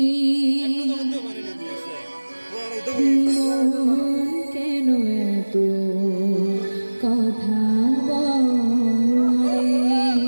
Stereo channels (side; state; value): both; inverted; correlation -1.00